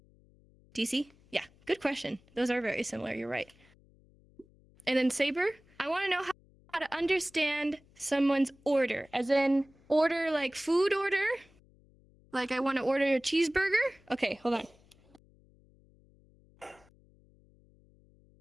Do you see? Yeah, good question. Those are very similar, you're right. And then Saber, I want to know how to understand someone's order, as in order like food order. Like I want to order a cheeseburger. Okay, hold on.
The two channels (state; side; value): noise; left; hum, 29 dB below the sound